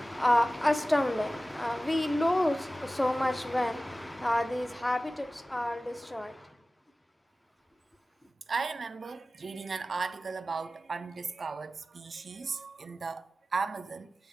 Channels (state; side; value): normal; both; correlation 0.96